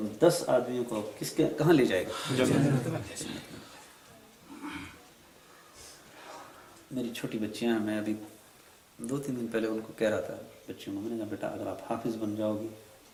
10 آدمیوں کو کہاں لے جائے گا؟ میری چھوٹی بچیاں ہیں، میں ابھی 2-3 دن پہلے ان کو کہہ رہا تھا بچیوں کو، میں نے کہا بیٹا اگر آپ حافظ بن جاؤ گی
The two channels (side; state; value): both; identical; correlation 1.00